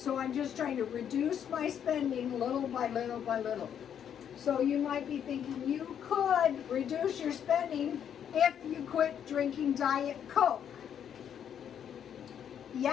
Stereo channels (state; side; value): quieter; right; 8.9 dB